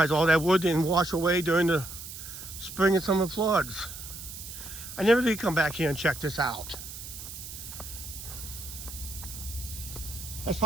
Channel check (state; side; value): noise; right; hiss, 11 dB below the sound